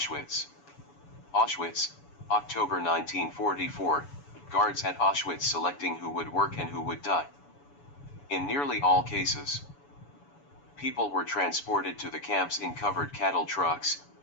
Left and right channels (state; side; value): late; right; 7.0 ms